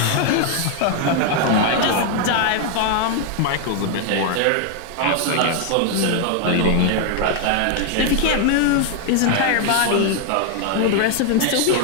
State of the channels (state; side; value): different; both; correlation 0.00